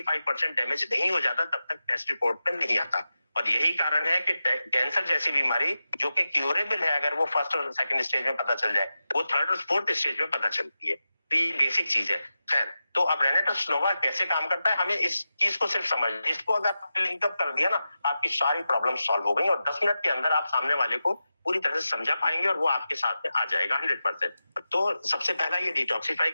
डैमेज नहीं हो जाता, तब तक टेस्ट रिपोर्ट में नहीं आता। और यही कारण है कि कैंसर जैसी बीमारी जो कि क्यूरेबल है, अगर वो फर्स्ट और सेकंड स्टेज में पता चल जाए, वो थर्ड और फोर्थ स्टेज में पता चलती है। तो ये बेसिक चीज है। खैर, तो अब रेनेटस नोवा कैसे काम करता है, हमें इस चीज को सिर्फ समझ, इसको अगर लिंकअप कर दिया ना, आपकी सारी प्रॉब्लम सॉल्व हो गई और 10 मिनट के अंदर आप सामने वाले को पूरी तरह से समझा पाएंगे और वो आपके साथ में आ जाएगा 100%। तो सबसे पहला ये डिटॉक्सिफाई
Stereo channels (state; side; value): inverted; both; correlation -0.92